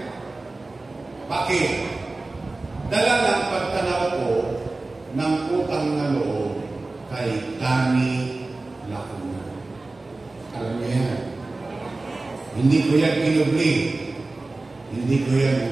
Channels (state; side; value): quieter; left; 3.2 dB